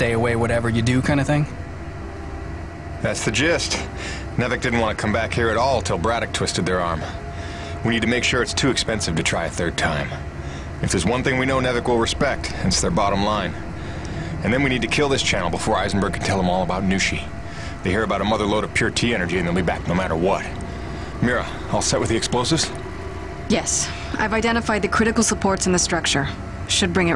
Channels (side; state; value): both; identical; correlation 1.00